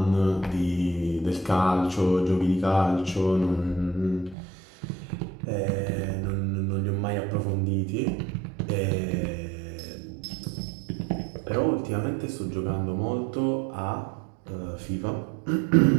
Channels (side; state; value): left; drops out; at 4.4 s